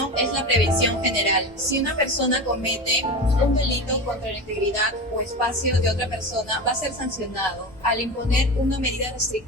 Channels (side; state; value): both; normal; correlation 0.26